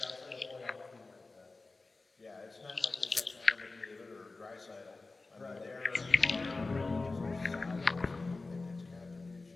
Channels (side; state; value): right; quieter; 3.6 dB